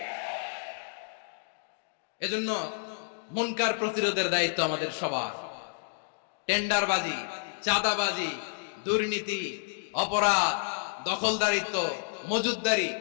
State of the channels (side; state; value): right; silent; digital silence